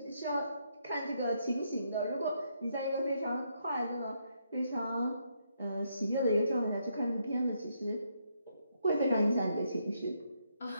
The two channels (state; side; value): inverted; both; correlation -0.76